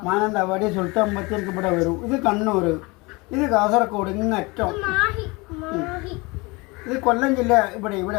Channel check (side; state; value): right; quieter; 25.5 dB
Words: മാനന്തവാടി സുൽത്താൻ ബത്തേരിക്ക് ഇവിടെ വരും. ഇത് കണ്ണൂർ, ഇത് കാസർഗോഡ്, ഇങ്ങറ്റം. ഇത് കൊല്ലം ജില്ല ഇവിടെ